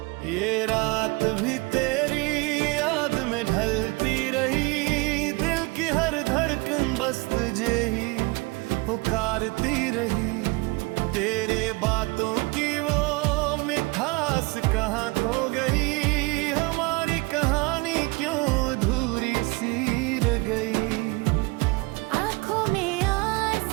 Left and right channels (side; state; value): left; quieter; 25.9 dB